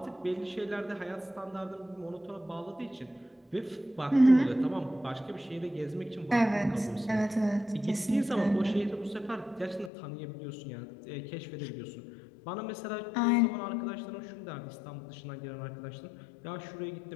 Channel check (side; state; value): right; drops out; at 9.9 s